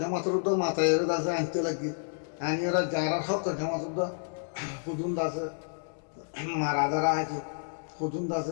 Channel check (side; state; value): right; silent; digital silence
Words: মাথায় আছে আনতে লাগি আনি ওরা যারা হক জমাতর হুদুন আছে মারা দ্বারা হয়তো হুদুন